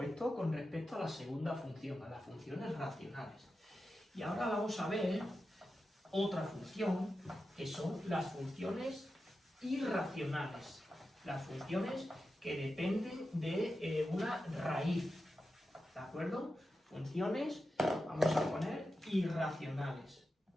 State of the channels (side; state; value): both; normal; correlation 0.91